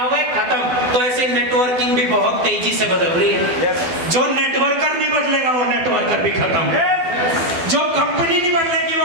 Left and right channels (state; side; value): late; left; 12 ms